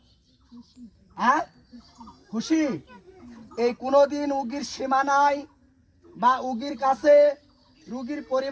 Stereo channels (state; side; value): identical; both; correlation 1.00